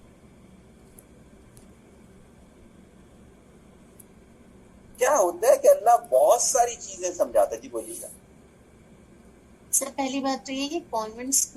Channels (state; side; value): identical; both; correlation 1.00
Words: کیا ہوتا ہے کہ اللہ بہت ساری چیزیں سمجھاتا ہے. جی بولیے گا. سر پہلی بات تو یہ کہ کانوینٹ